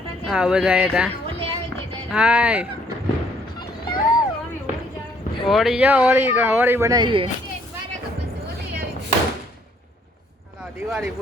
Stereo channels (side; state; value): both; normal; correlation 0.65